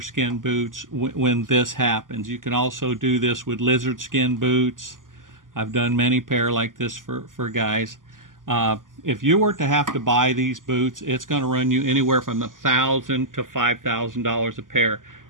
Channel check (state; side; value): late; left; 0.89 ms